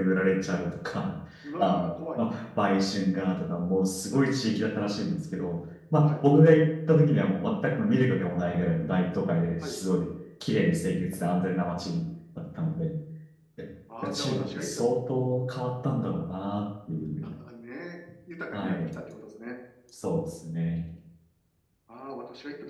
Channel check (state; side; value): identical; both; correlation 1.00